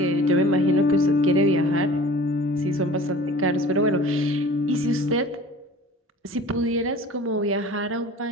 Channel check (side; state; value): both; normal; correlation 0.43